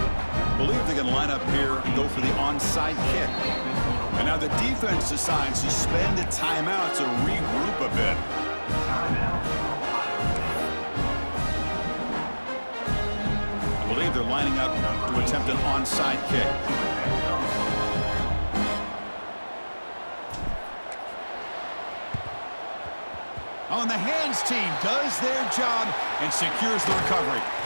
Believe they're going to line up here and go for the onside kick. And now the defense decides to spend a timeout to regroup a bit. I believe they're lining up to attempt an onside kick. Oh, and the hands team does their job and secures the recovery.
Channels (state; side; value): inverted; both; correlation -1.00